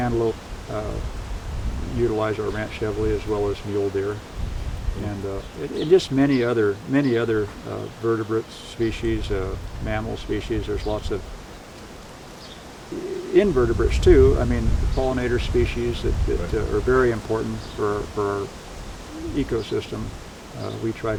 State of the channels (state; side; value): identical; both; correlation 1.00